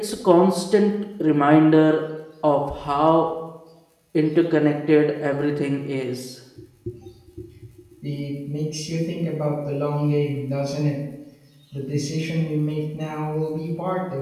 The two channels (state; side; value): identical; both; correlation 1.00